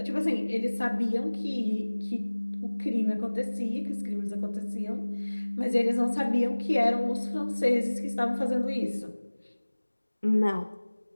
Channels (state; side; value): inverted; both; correlation -1.00